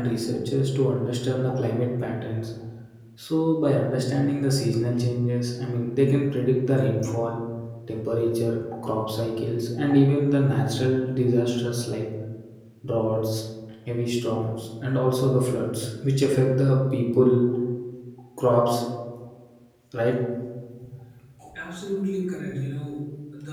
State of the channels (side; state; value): both; identical; correlation 1.00